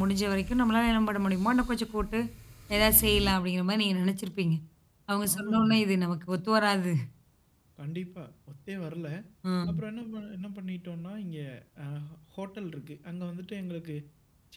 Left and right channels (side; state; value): both; identical; correlation 1.00